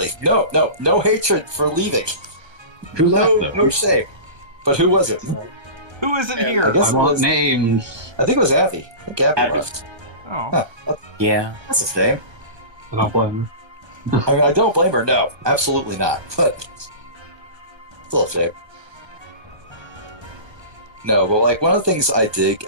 no hatred for leaving. Who left, though? No shame. But who was it? Who isn't I here? guess I it want was- names. I think it was Abby. I think Abby Abby. left. Oh. Yeah. That's his name. I don't blame them. I mean, I don't blame her. No, absolutely not. But still a shame. No, but like one of the things I dig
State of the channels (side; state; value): left; late; 1.3 ms